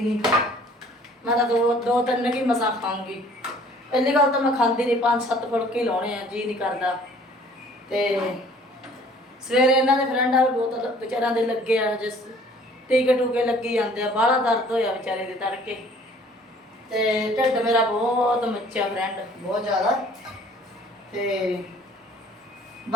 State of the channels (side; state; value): both; normal; correlation 0.54